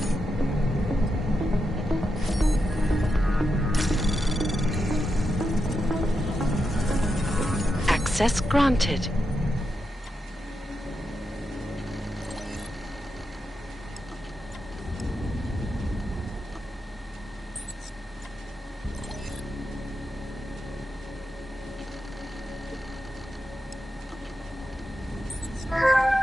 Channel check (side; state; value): both; normal; correlation 0.86